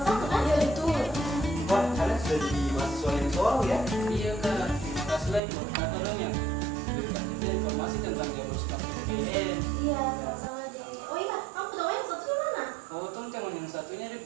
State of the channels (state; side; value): drops out; left; at 5.4 s